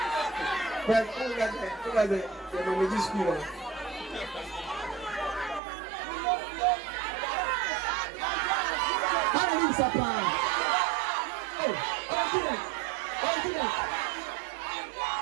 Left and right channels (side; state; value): left; drops out; at 5.6 s